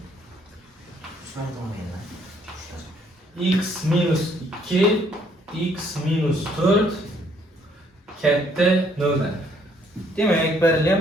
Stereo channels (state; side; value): normal; both; correlation 0.66